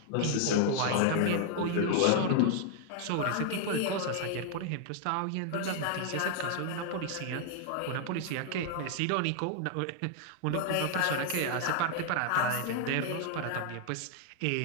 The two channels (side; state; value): both; different; correlation 0.00